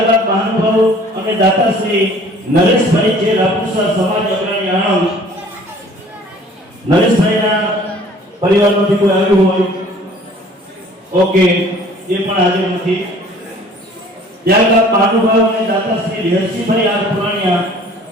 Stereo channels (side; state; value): both; normal; correlation 0.52